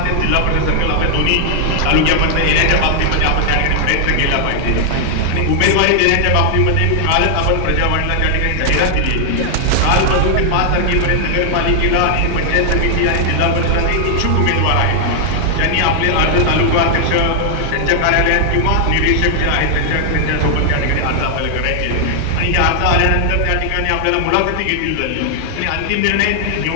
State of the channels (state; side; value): different; both; correlation 0.00